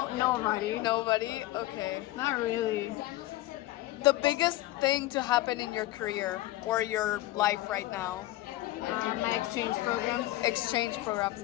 Nobody. nobody? Okay. Not really. The biggest thing to happen in your career or your life right now? My exchange programs, Exchange programs.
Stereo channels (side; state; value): right; quieter; 17.0 dB